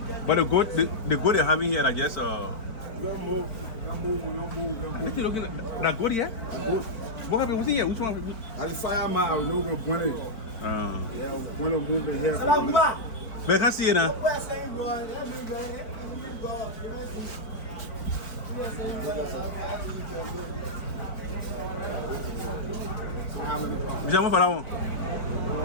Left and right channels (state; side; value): late; right; 4.5 ms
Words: But the goat they're having here, I guess. What you looking at? That goat here? What happened? What's in here? Which one? I just fire my I know going to point it. Yeah, when I'm moving here. But I can't see it now.